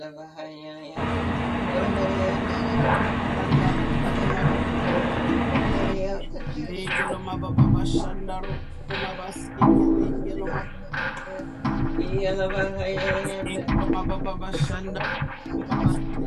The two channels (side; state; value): both; identical; correlation 1.00